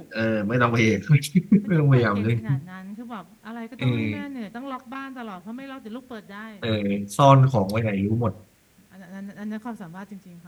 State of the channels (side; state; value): both; identical; correlation 1.00